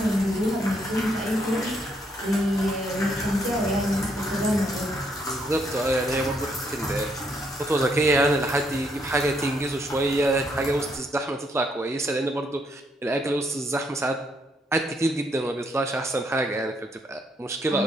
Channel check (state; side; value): normal; both; correlation 0.73